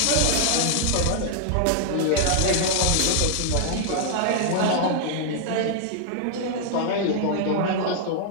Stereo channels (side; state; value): both; different; correlation 0.00